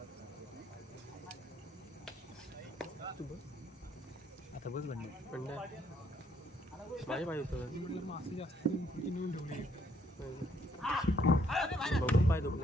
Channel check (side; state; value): both; normal; correlation 0.68